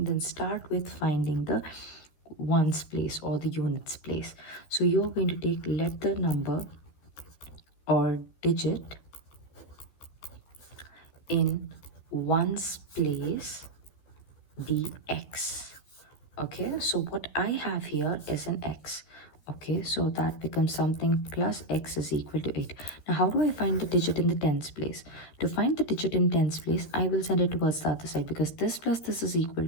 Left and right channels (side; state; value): right; late; 13 ms